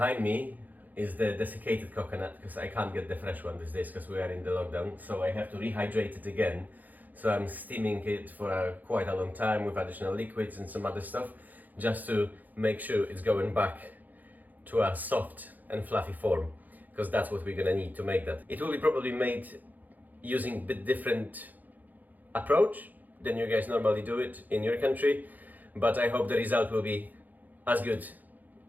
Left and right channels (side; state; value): left; late; 0.082 ms